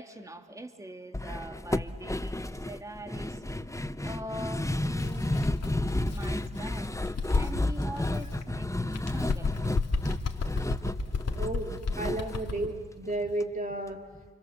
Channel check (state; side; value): normal; both; correlation 0.83